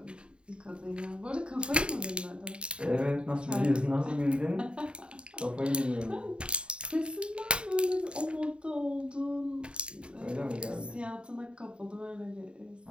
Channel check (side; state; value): left; late; 0.053 ms